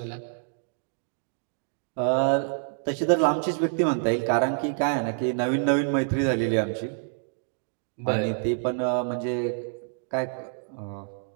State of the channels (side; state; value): left; silent; digital silence